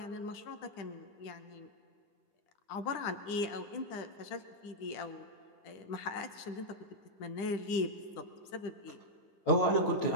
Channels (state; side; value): late; right; 10 ms